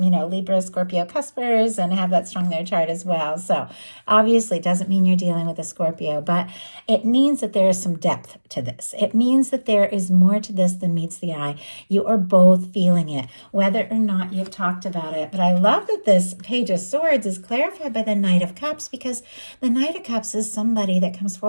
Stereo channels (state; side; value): inverted; both; correlation -1.00